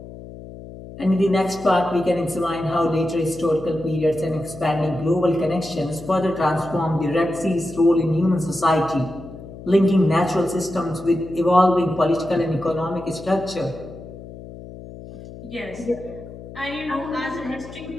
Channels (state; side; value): noise; left; hum, 14 dB below the sound